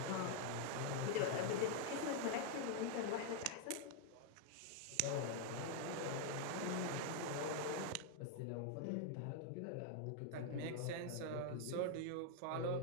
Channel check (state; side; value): different; both; correlation 0.00